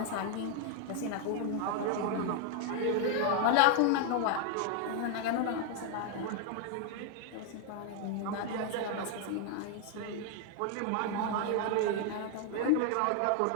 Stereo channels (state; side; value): different; both; correlation 0.01